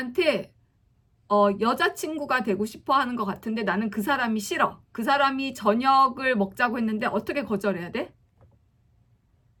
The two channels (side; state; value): both; identical; correlation 1.00